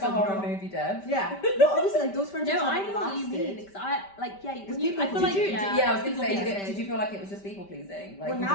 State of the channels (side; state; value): right; late; 5.1 ms